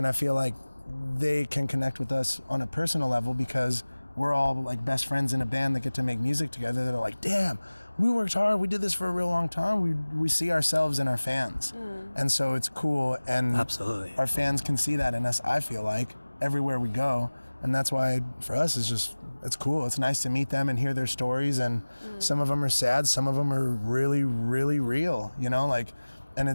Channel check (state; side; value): inverted; both; correlation -1.00